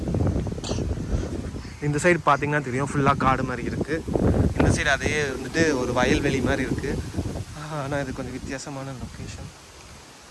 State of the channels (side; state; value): both; identical; correlation 1.00